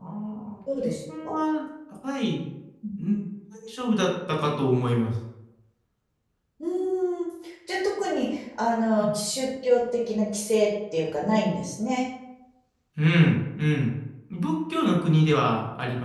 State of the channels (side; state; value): both; identical; correlation 1.00